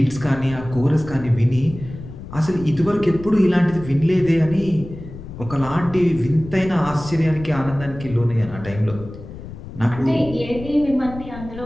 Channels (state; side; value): noise; left; rumble, 13 dB below the sound